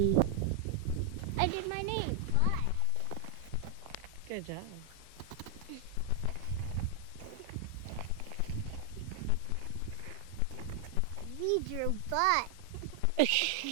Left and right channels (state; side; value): different; both; correlation 0.00